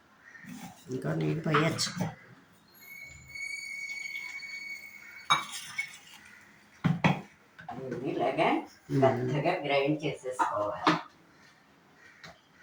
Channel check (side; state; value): both; identical; correlation 1.00